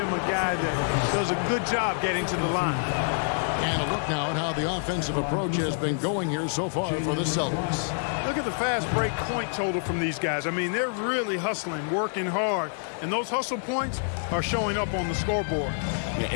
a guy that does a good job getting to the line. And a look now at how the offensive approach has been going here so far for the Celtics. Look at the fast break point total from these guys. I mean, they're really hustling, working hard, and those hustle points are showing up on the scoreboard. Yeah,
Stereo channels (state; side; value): silent; right; 60 dB below the other